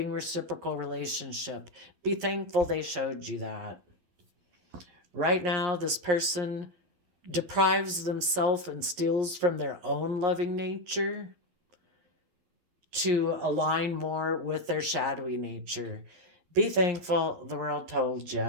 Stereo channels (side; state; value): left; late; 11 ms